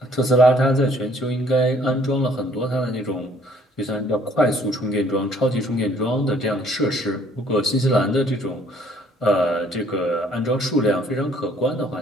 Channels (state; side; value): normal; both; correlation 0.60